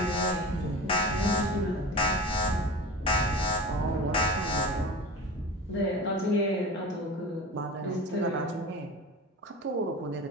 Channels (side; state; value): both; normal; correlation 0.33